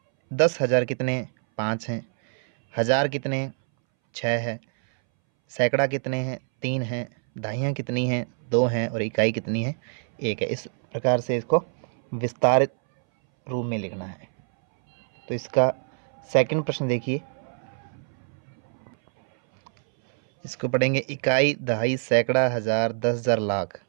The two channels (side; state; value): left; silent; 62 dB below the other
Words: 10,000 कितने 5 हैं, हजार कितने 6 है, सैकड़ा कितने हैं 3 हैं, दहाइयाँ कितनी हैं 2 हैं और इकाई कितनी है 1 है। इस प्रकार से इसको विस्तारित रूप में लिखना है। तो इसका सेकंड प्रश्न देखिए, इसको पढ़ेंगे। इकाई, दहाई, सैकड़ा, हजार, 10,000, लाख।